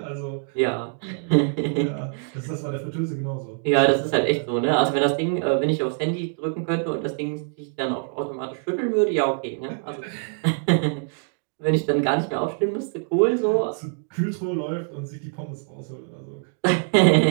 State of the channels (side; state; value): left; silent; 57 dB below the other